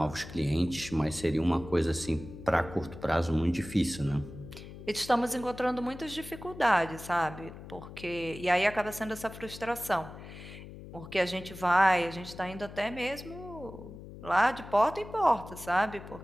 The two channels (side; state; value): left; noise; hum, 14 dB below the sound